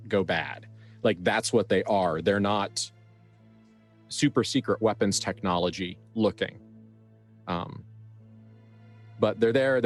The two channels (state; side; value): identical; both; correlation 1.00